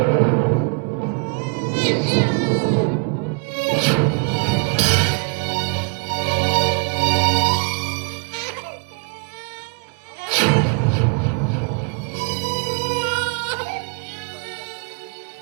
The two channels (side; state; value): left; quieter; 35.8 dB